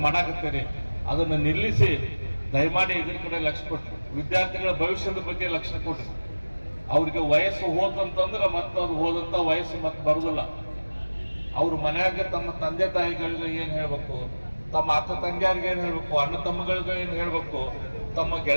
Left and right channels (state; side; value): inverted; both; correlation -1.00